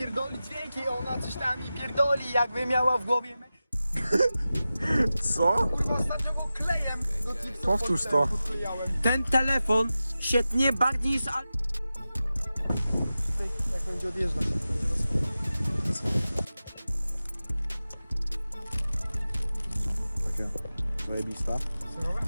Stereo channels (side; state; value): both; inverted; correlation -0.94